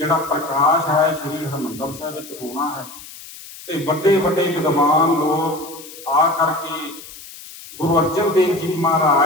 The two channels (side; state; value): left; noise; hiss, 16 dB below the sound